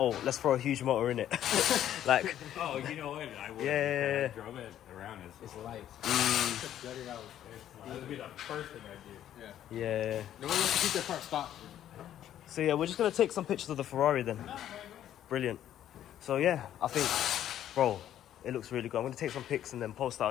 let's throw a huge motor in it. Like, Oh, you know what? I would. Yeah. I drove it around. It's light. Gutted out. That would be the first thing I do. Yeah. yeah. No one wants to keep their car stock. So yeah, we're just gonna take some pictures of the Ferrari then. Brilliant. So yeah, I think, bro, it looks really good. I'm gonna take some pics and then post that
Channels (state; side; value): quieter; right; 11.3 dB